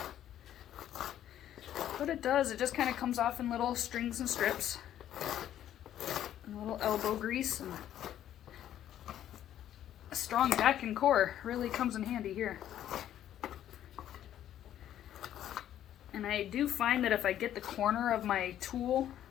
What it does, it just kind of comes off in little strings and strips. And a little elbow grease. And a strong back and core really comes in handy here. And I do find that if I get the corner of my tool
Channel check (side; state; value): right; quieter; 11.4 dB